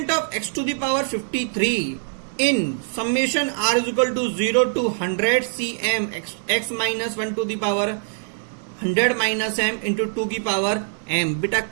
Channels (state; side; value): silent; left; digital silence